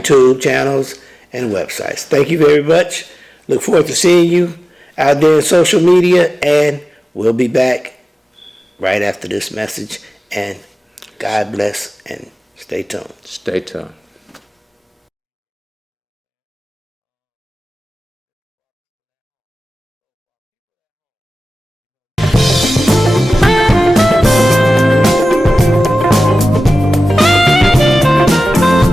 YouTube channels and websites. Thank you very much. Look forward to seeing you out there in social media, and we'll be back right after this message. And God bless, and stay tuned. Stay tuned.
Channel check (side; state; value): both; normal; correlation 0.96